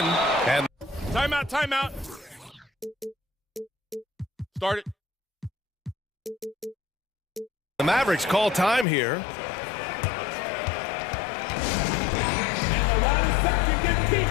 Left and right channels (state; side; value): drops out; right; at 8.8 s